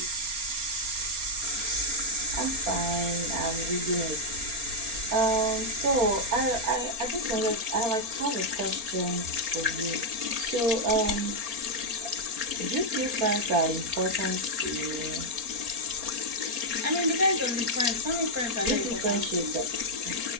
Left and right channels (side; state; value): left; late; 4.3 ms